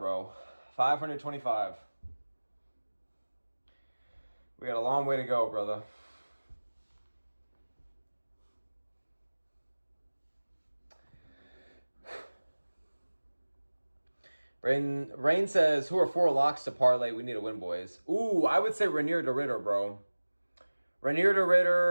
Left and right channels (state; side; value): inverted; both; correlation -1.00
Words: 525. We got a long way to go, brother. Rain says, who are 4 locks to parlay? We need a win, boys. Ooh, I would say Rainier to Ritter, bro. Rainier to